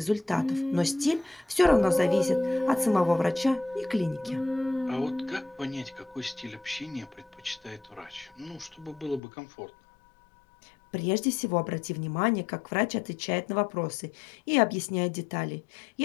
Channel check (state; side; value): drops out; right; at 9.2 s